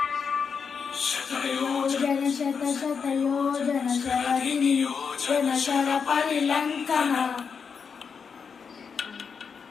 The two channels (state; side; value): quieter; right; 6.1 dB